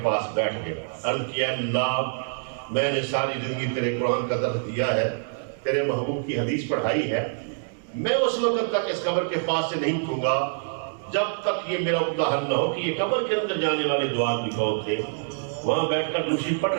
پاس بیٹھ گئے. عرض کیا اللہ, میں نے ساری زندگی تیرے قرآن کا درس دیا ہے, تیرے محبوب کی حدیث پڑھائی ہے. میں اس وقت تک اس قبر کے پاس سے نہیں اٹھوں گا جب تک یہ میرا عقدہ حل نہ ہو کہ یہ قبر کے اندر جانے والے 2 آدمی کون تھے. وہاں بیٹھ کر دوسری پڑھ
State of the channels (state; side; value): silent; left; digital silence